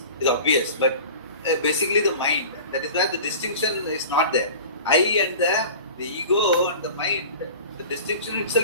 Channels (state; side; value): inverted; both; correlation -0.38